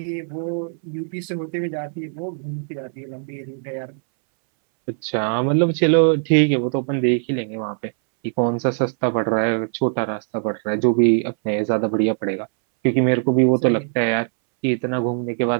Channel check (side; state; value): left; silent; 64 dB below the other